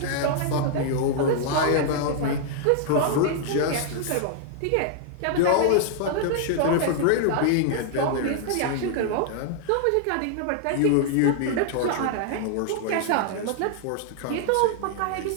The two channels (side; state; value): both; different; correlation -0.01